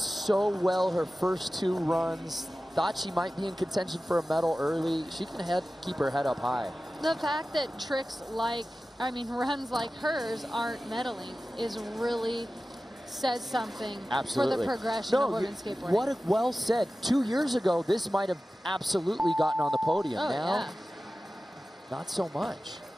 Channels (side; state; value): both; normal; correlation 0.95